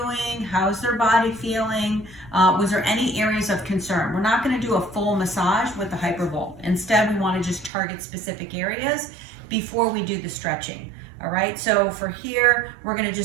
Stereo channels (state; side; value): drops out; left; at 7.7 s